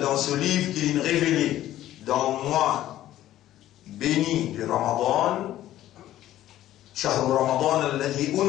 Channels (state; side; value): quieter; right; 13.5 dB